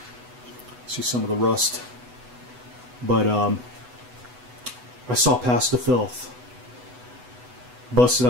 See some of the rust. But I saw past the filth. Busted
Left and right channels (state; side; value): late; left; 8.0 ms